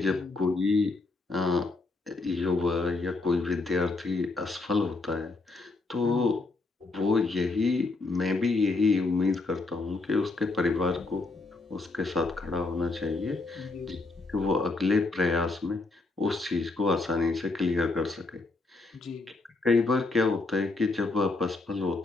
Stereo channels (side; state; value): right; quieter; 3.5 dB